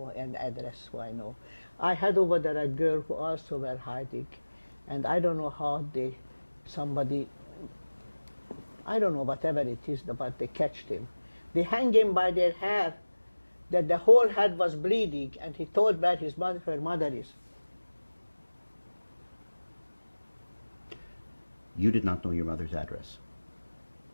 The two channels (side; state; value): both; inverted; correlation -1.00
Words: and address who I know. I had over there a girl who also were hiding, and I don't know how somebody, I don't know, whatever it is, but they catched him. They hang him by their hair, that the whole head was bleeding, and he told where her mother is. You did not know your mother's address,